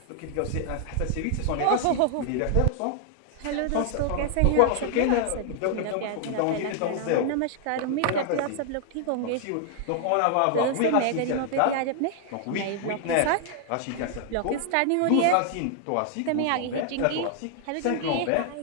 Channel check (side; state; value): both; different; correlation 0.00